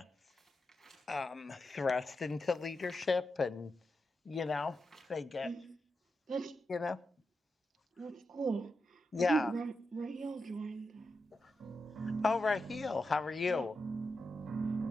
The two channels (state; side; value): normal; both; correlation 0.88